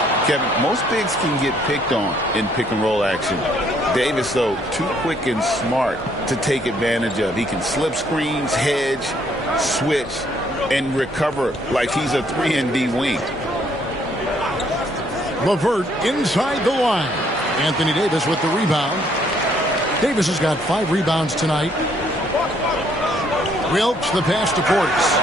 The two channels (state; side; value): normal; both; correlation 0.67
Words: Kevin, most bigs can get picked on in pick-and-roll action. Davis, though, too quick and smart to take advantage of. He can slip screens, hedge, switch, and recover like he's a 3-and-D wing. LeVert inside the line. Anthony Davis with the rebound. Davis has got 5 rebounds tonight. Wilkes the pass to Portis.